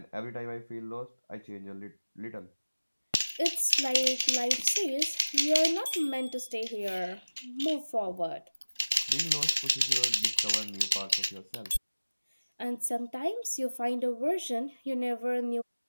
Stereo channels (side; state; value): both; inverted; correlation -1.00